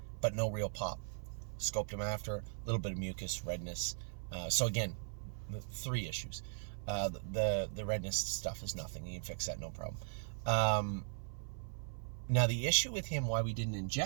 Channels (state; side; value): silent; left; 52 dB below the other